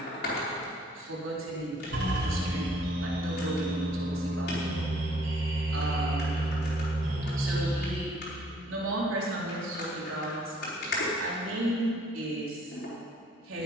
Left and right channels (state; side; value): normal; both; correlation 0.61